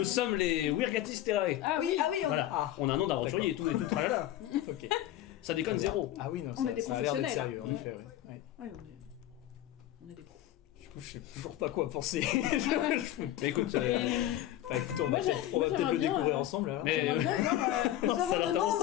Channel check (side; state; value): right; quieter; 13.2 dB